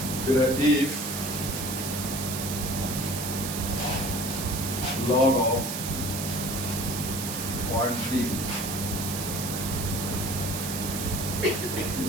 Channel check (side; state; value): right; noise; hiss, 5 dB below the sound